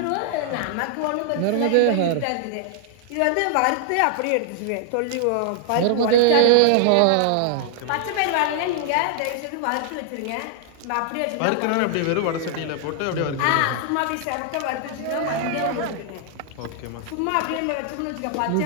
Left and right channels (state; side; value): different; both; correlation -0.01